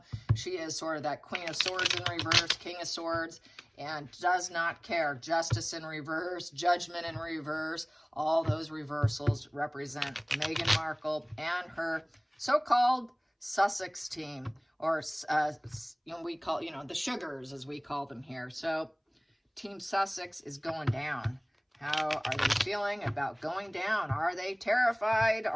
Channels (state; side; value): identical; both; correlation 1.00